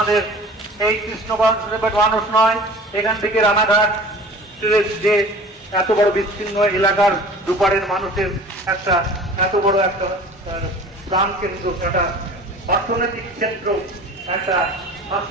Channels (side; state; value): both; normal; correlation 0.43